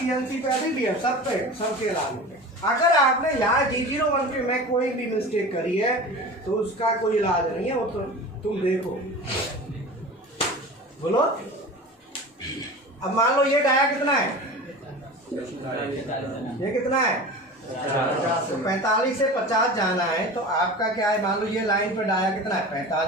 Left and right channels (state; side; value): normal; both; correlation 0.34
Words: पे भी है, सब पे, सबके लागू पे। अगर आपने यहाँ G01 के में कोई भी मिस्टेक करी है तो उसका कोई इलाज नहीं है, वो तो तुम देखो। बोलो। अब मान लो ये डाया कितना है, ये कितना है 50। तो 45 से 50 जाना है, तो आपका क्या है, मान लो ये लाइन पे डाया कितना है